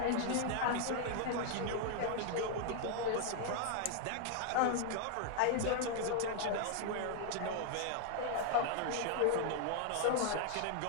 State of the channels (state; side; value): different; both; correlation 0.00